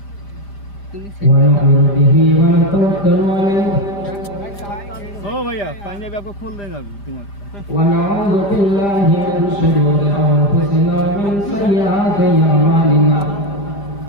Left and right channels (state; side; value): late; right; 5.0 ms